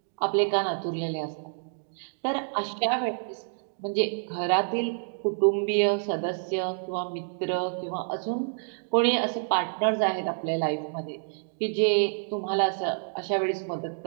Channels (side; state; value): left; silent; digital silence